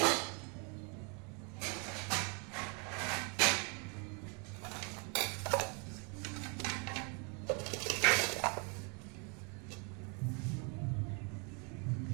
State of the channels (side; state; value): left; quieter; 34.7 dB